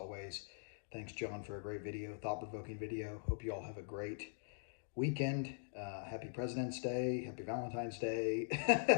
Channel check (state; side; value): silent; right; digital silence